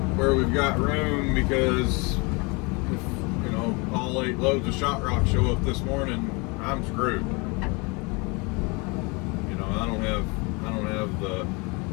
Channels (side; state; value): right; quieter; 29.0 dB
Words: room, because if all 8 loads of shot rock show up this morning, I'm screwed.